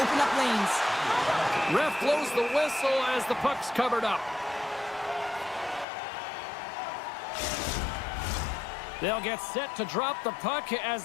up lanes. Ref blows the whistle as the puck's covered up. They'll get set to drop the puck as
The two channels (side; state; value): right; drops out; at 5.9 s